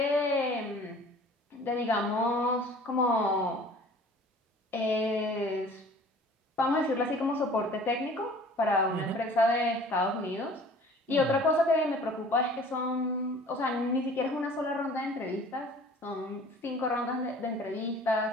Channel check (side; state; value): both; normal; correlation 0.48